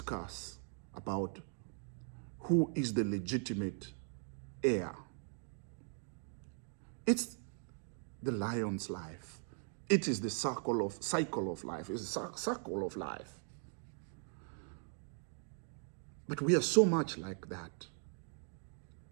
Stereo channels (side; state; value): left; silent; 51 dB below the other